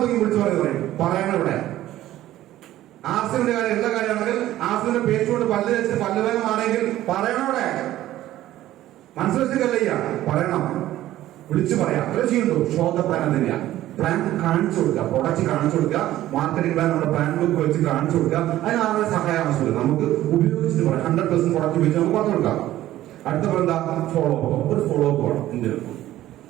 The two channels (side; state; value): left; quieter; 14.2 dB